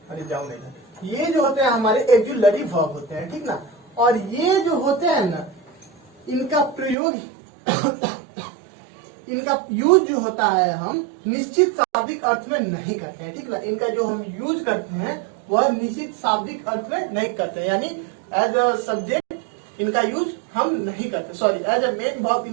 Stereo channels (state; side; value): drops out; left; at 7.0 s